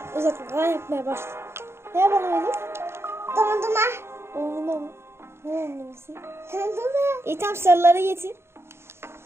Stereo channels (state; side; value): late; left; 0.12 ms